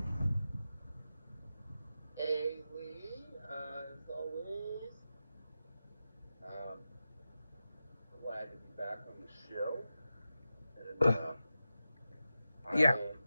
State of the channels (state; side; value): inverted; both; correlation -0.92